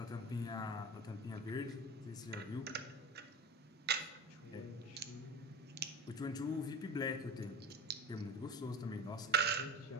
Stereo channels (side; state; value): both; normal; correlation 0.30